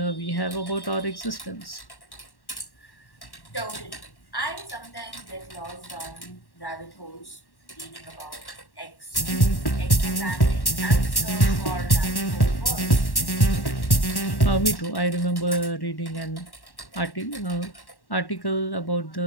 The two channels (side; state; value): right; late; 1.1 ms